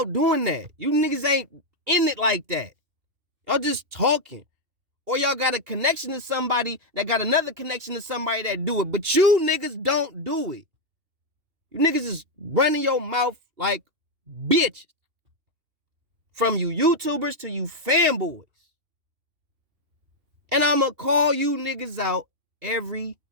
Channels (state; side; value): late; left; 2.7 ms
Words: doing that. You niggas ain't in it like that. Y'all just talking. Or y'all got a connection to somebody that got another connection to somebody that do it. But you niggas don't do it. You niggas is running your mouth like bitches. From you YouTubers to you fanboys. And I'ma call you niggas out every